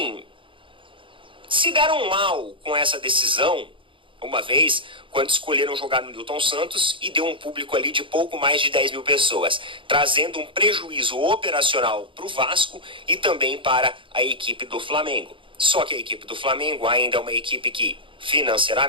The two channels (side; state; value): left; late; 0.25 ms